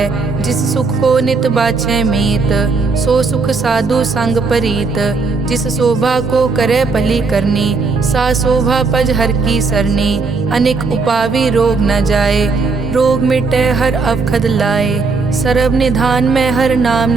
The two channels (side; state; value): left; quieter; 4.2 dB